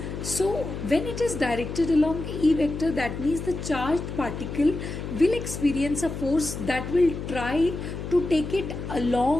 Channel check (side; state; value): left; noise; hum, 7 dB below the sound